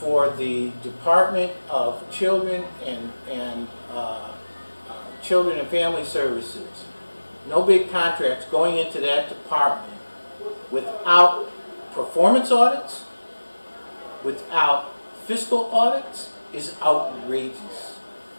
Department of Children and Children and Family Services, no big contracts going into that department without performance audits, without fiscal audits, is outrageous.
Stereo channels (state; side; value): inverted; both; correlation -1.00